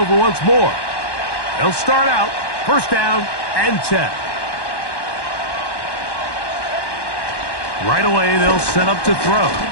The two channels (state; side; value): late; right; 1.1 ms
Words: once more. They'll start out 1st down and 10. Right away, they'll set up to throw.